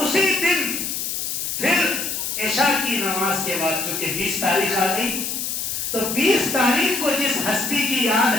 اسی دن پھر عشاء کی نماز کے بعد، چونکہ 20 تاریخ آ گئی، تو 20 تاریخ کو جس ہستی کی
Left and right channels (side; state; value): left; noise; hiss, 3 dB below the sound